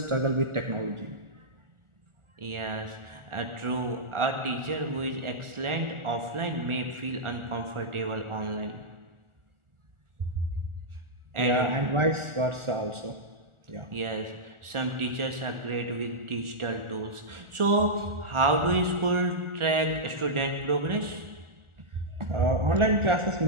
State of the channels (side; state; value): left; late; 1.4 ms